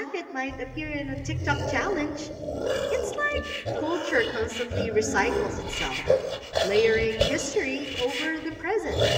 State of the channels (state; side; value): identical; both; correlation 1.00